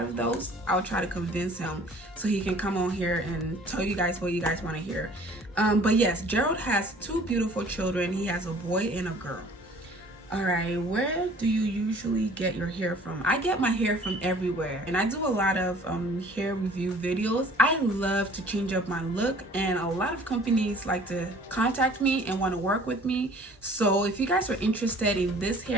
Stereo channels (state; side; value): normal; both; correlation 0.51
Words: of those, I'll try to convince him so he can come on here and tell you guys what you guys want to hear. But yes, Gerald has 2 beautiful children. He has a boy and a girl. All right, where do you usually get your hair from? I get my hair from everywhere, and I do a lot of hair review videos. I love to change up my look, and a lot of companies like to contact me and want to work with me. So if you guys are interested in this